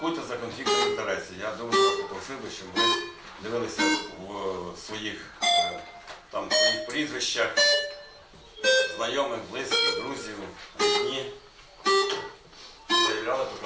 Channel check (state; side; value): identical; both; correlation 1.00